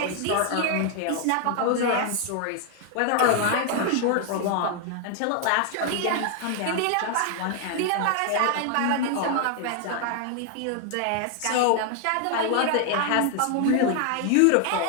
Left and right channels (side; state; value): both; different; correlation 0.00